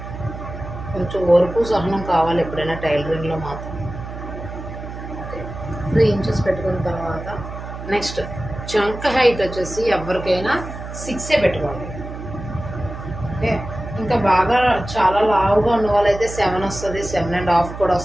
కొంచెం ఓర్పు సహనం కావాలి ఎప్పుడైనా టైలరింగ్లో మాత్రం. ఓకే, 3 ఇంచెస్ పెట్టుకున్న తర్వాత నెక్స్ట్ చంక హైట్ వచ్చేసి ఎవరికైనా 6 పెట్టుకోండి. ఓకే, ఇంకా బాగా చాలా లావుగా ఉన్న వాళ్ళైతే 7 వస్తుంది, 7.5 కూడా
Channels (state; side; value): noise; right; hum, 10 dB below the sound